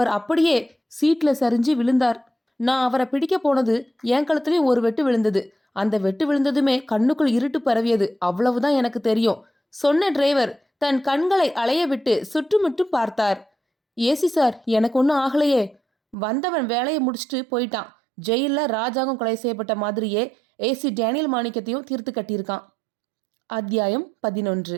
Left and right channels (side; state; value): left; drops out; at 16.2 s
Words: அப்படியே சீட்ல சரிஞ்சு விழுந்தார். நான் அவரை பிடிக்க போனது என் கழுத்துலயும் ஒரு வெட்டு விழுந்தது. அந்த வெட்டு விழுந்ததுமே கண்ணுக்குள் இருட்டு பரவியது. அவ்வளவுதான் எனக்கு தெரியும் சொன்ன டிரைவர் தன் கண்களை அலைய விட்டு சுற்றுமுற்றும் பார்த்தார். ஏசி சார், எனக்கு ஒன்றும் ஆகலையே. வந்தவன் வேலையை முடிச்சுட்டு போயிட்டான். ஜெயில ராஜாங்கம் கொலை செய்யப்பட்ட மாதிரியே ஏசி டேனியல் மாணிக்கத்தையும் தீர்த்து கட்டியிருக்கான். அத்தியாயம் 11.